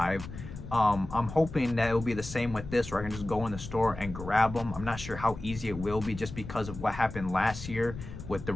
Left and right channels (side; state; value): left; noise; rumble, 11 dB below the sound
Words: I'm hoping that it will be the same with this, where I can just go in the store and grab them. I'm not sure how easy it will be just because of what happened last year with the